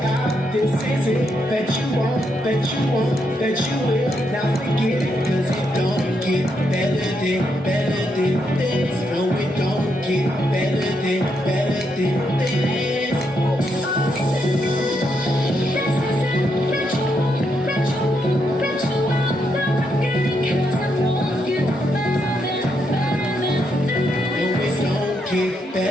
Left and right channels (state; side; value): normal; both; correlation 0.79